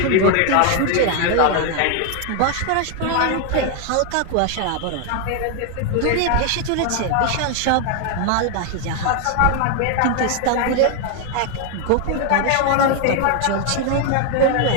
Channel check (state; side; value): different; both; correlation 0.00